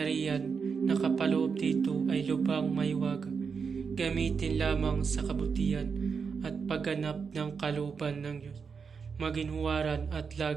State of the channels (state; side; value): quieter; left; 5.7 dB